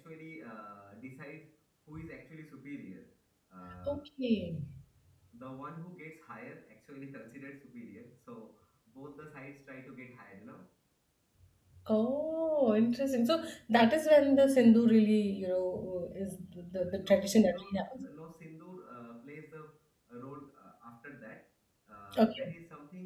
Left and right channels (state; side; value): identical; both; correlation 1.00